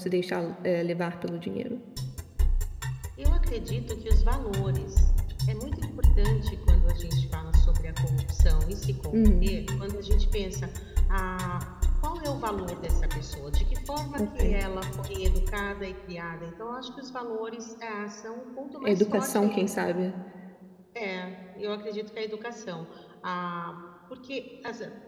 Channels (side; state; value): both; identical; correlation 1.00